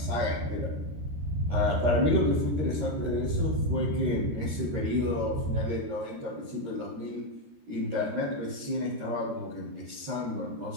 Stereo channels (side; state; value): left; late; 13 ms